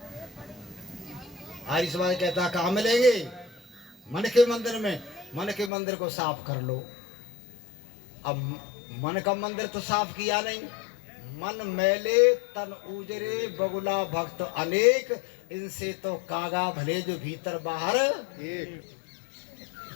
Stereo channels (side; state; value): right; drops out; at 5.7 s